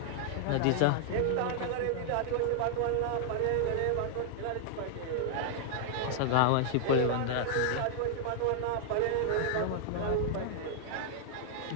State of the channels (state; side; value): different; both; correlation -0.01